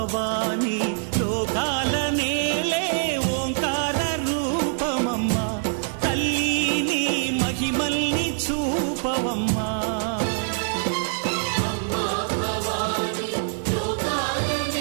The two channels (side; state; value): left; silent; 61 dB below the other